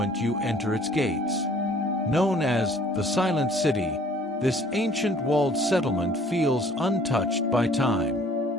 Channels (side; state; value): both; normal; correlation 0.55